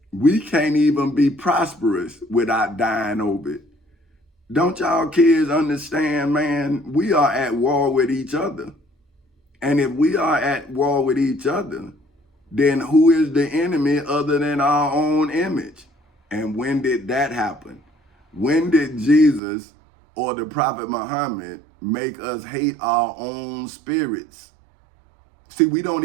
we can't even be prosperous without dying over it. Don't y'all kids understand, man? We are at war with each other. And if we are at war with each other, then who is the enemy other than our own image? And when did that happen? When did Jesus or the Prophet Muhammad make us hate our own spirits? See, we don't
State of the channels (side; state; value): left; drops out; at 19.4 s